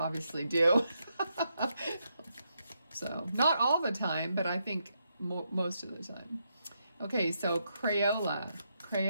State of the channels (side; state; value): both; inverted; correlation -0.81